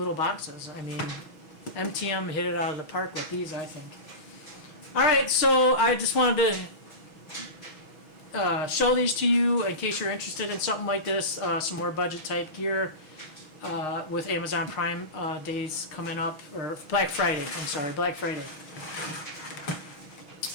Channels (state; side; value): late; right; 6.5 ms